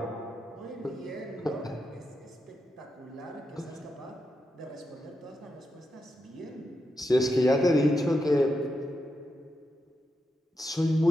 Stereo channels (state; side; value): normal; both; correlation 0.86